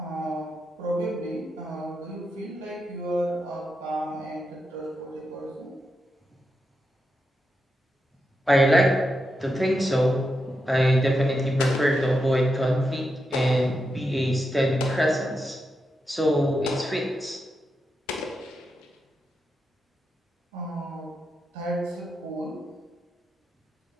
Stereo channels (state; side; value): normal; both; correlation 0.86